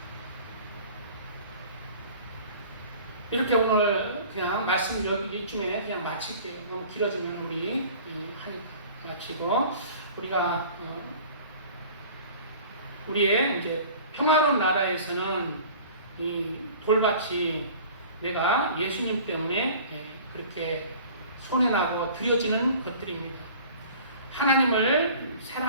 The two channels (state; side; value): inverted; both; correlation -0.45